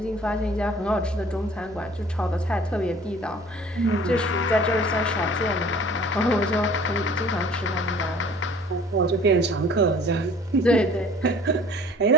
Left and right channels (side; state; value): both; normal; correlation 0.49